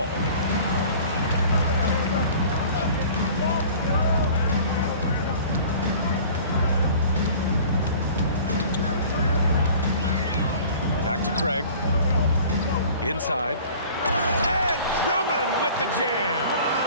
Back to Craig. Inside. And Drummond with the jam.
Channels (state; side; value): inverted; both; correlation -0.46